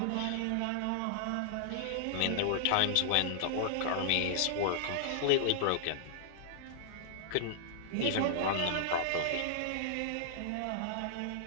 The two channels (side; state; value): both; different; correlation -0.01